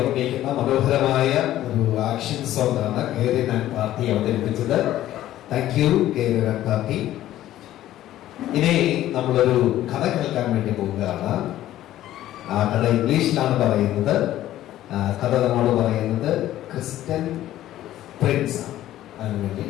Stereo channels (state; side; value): quieter; right; 13.6 dB